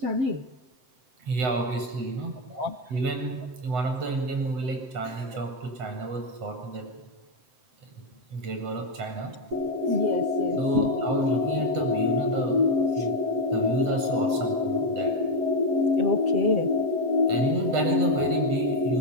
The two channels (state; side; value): late; left; 7.7 ms